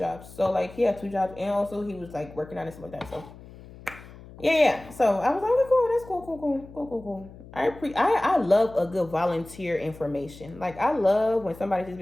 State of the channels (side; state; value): left; noise; hum, 18 dB below the sound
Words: So like, he had 2 jobs, and also he was like working on it, stuff like that. So yeah. So I was like, okay, cool. That's cool. I love a good volunteer information. Like I love when somebody just